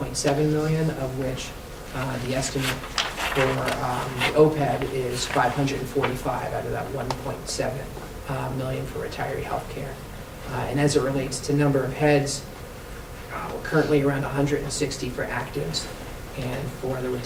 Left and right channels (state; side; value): identical; both; correlation 1.00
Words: million, of which the estimate for the OPEB is 545 out of that 1.7 million for retiree healthcare. And as it relates to number of heads, we're currently around 160 for actives, and for the